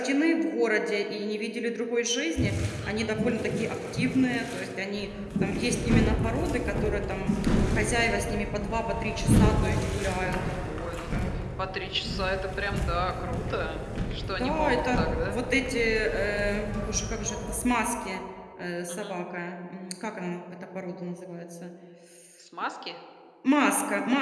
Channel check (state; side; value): identical; both; correlation 1.00